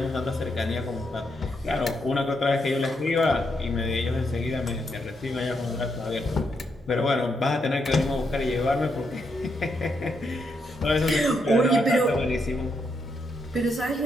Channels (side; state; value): both; normal; correlation 0.80